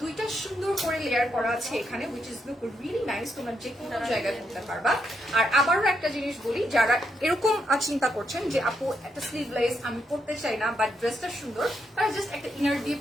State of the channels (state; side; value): normal; both; correlation 0.79